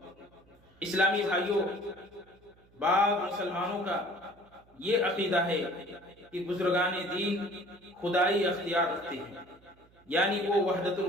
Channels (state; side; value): noise; right; hum, 29 dB below the sound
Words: اسلامی بھائیوں، بعض مسلمانوں کا یہ عقیدہ ہے کہ بزرگان دین خدائی اختیار رکھتے ہیں، یعنی وہ وحدت